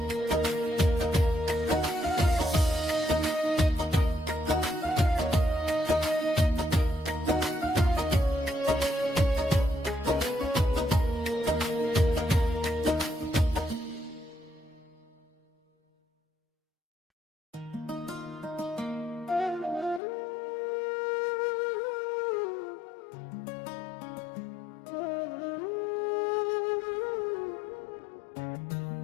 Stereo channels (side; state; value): right; drops out; at 20.0 s